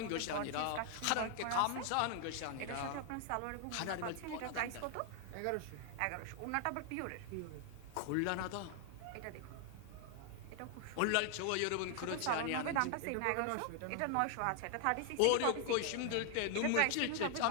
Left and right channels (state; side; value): different; both; correlation 0.00